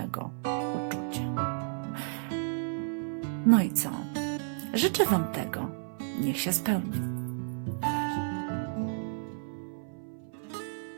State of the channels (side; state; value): left; silent; 57 dB below the other